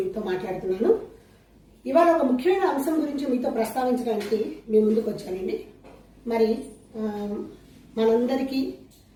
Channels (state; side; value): identical; both; correlation 1.00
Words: మాట్లాడుతున్నాను. ఇవాళ ఒక ముఖ్యమైన అంశం గురించి మీతో ప్రస్తావించడానికి మీ ముందుకు వచ్చానండి. మరి మనందరికీ